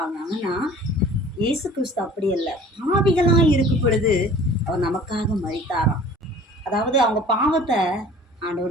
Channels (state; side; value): normal; both; correlation 0.47